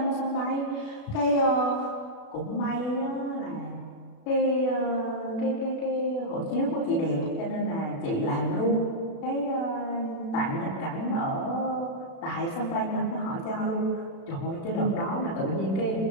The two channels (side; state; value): right; late; 36 ms